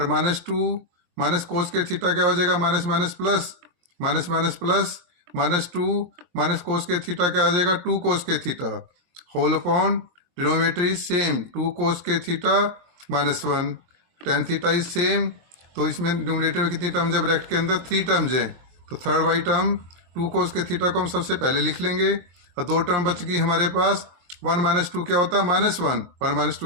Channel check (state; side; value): late; left; 23 ms